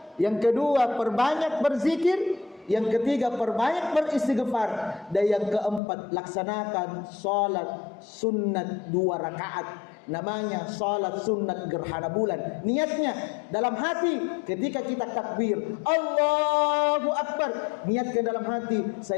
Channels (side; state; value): right; drops out; at 5.8 s